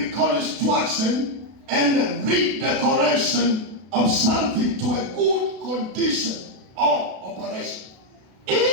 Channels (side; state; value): left; late; 32 ms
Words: reconstruction and redecoration of something to a good condition or operation.